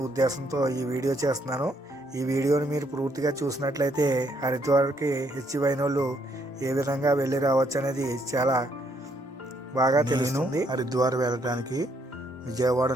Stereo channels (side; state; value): both; normal; correlation 0.71